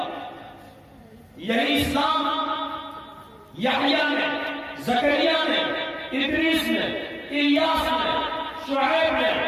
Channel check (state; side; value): identical; both; correlation 1.00